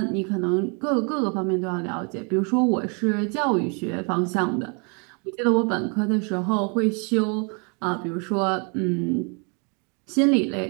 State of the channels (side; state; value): left; quieter; 35.4 dB